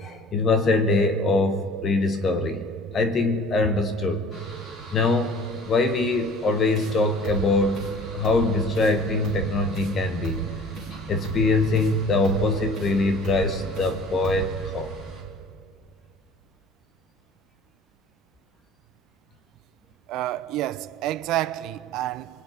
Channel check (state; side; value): normal; both; correlation 0.46